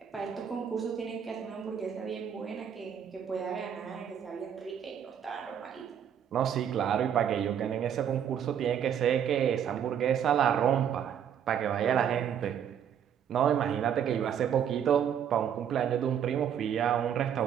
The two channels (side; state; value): left; quieter; 8.8 dB